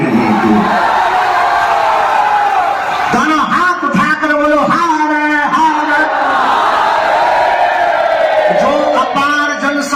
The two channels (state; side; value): identical; both; correlation 1.00